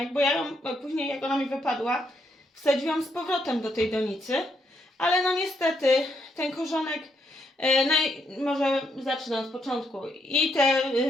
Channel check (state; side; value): normal; both; correlation 0.76